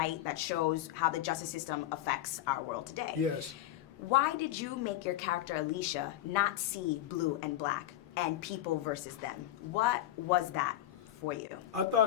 that shows how the justice system affects our world today. Yes. Why did you make your character Alicia not see blue and black and people versus them? What was that for you? I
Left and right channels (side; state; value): right; quieter; 13.2 dB